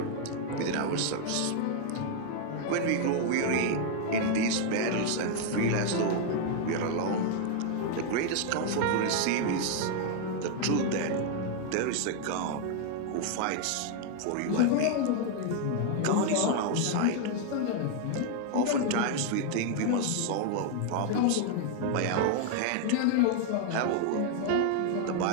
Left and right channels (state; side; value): different; both; correlation 0.00